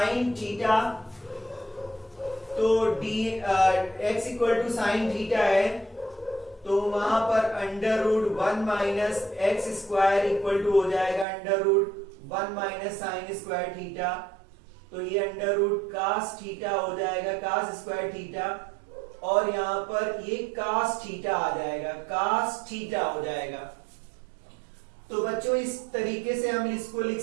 theta. तो x equal to sine theta है तो वहां पर under root 1 minus X square equal to हो जाएगा under root 1 minus sine square theta. तो ये अंडर रूट कास थीटा हो जाएगा, कास स्क्वायर थीटा और यहाँ पर ये कास थीटा आ जाएगा, कास थीटा हो जाएगा। तो बच्चों इस तरीके से हम इसको लिख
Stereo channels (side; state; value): left; drops out; at 11.2 s